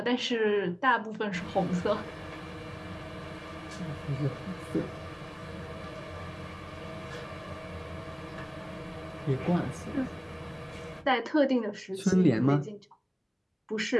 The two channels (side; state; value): both; identical; correlation 1.00